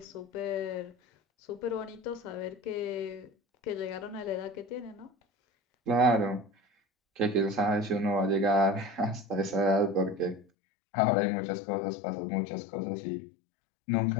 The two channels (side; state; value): right; drops out; at 10.5 s